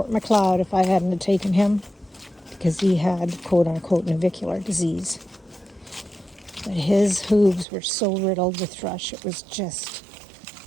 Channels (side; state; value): left; drops out; at 7.7 s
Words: Macleod if I hadn't have taken him, because he had quote-unquote navicular disease. But his hooves were so riddled with thrush, it was just